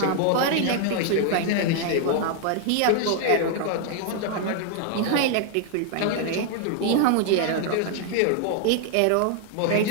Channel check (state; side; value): different; both; correlation 0.00